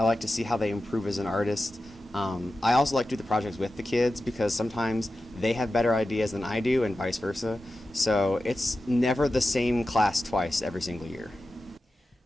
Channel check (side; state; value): both; normal; correlation 0.93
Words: like to see how they improve as an artist. I also like to do the projects with the kids because sometimes they have better ideas than I do and vice versa. So it's never the same class twice every single year.